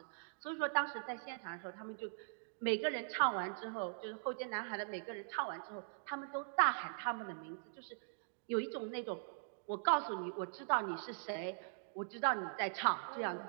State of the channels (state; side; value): silent; left; digital silence